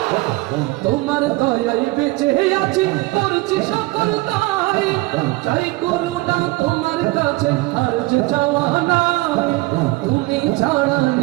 তোমার দয়ায় বেঁচে আছি করছি সকল দায় চাই করুণা তোমার কাছে আর যে চাওয়া নাই তুমি ছাড়া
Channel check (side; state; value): left; quieter; 21.6 dB